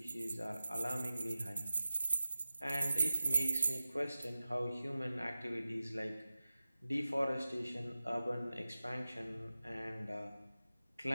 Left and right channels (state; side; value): inverted; both; correlation -0.96